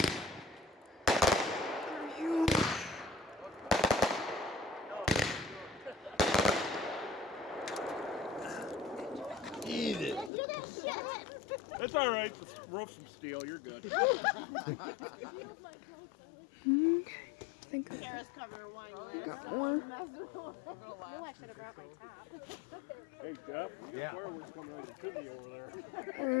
Are you? It's all right. The roof's from steel. You're good. I think I Sarah's covering her wine. got one. I should have brought my top. Hey, Jeff. Yeah. Fireworks coming out of the chimney over there.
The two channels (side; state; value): right; drops out; at 10.3 s